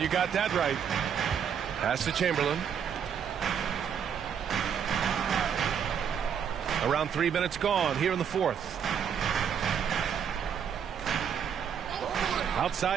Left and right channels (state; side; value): quieter; left; 7.9 dB